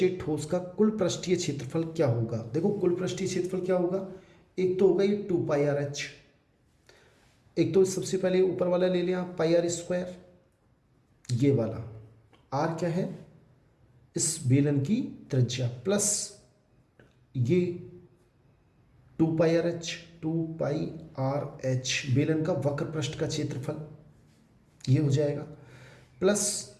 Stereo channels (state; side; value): identical; both; correlation 1.00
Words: ठोस का कुल पृष्ठीय क्षेत्रफल क्या होगा। देखो कुल पृष्ठीय क्षेत्रफल क्या होगा, एक तो होगा ये 2πrh, एक तो सबसे पहले ऊपर वाला ले लिया πr², ये वाला r क्या है, इस बेलन की त्रिज्या, प्लस ये 2πrh, 2πrh बेलन का वक्र पृष्ठ का क्षेत्रफल, ये हो जाएगा, प्लस